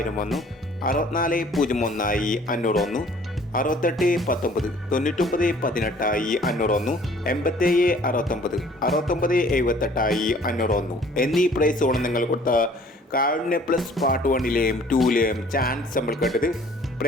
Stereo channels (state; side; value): normal; both; correlation 0.54